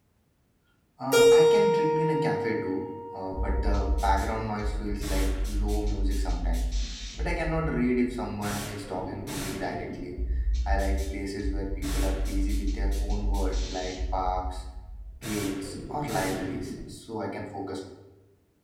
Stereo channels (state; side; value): identical; both; correlation 1.00